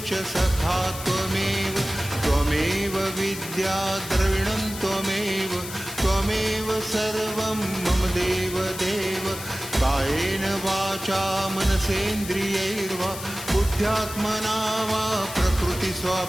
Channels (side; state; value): left; noise; hiss, 11 dB below the sound